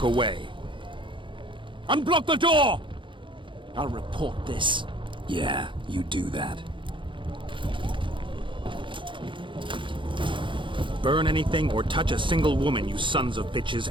away. Unblock the door! I'll report this. Yeah, you do that. Burn anything or touch a single woman, you sons of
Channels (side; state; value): left; late; 0.24 ms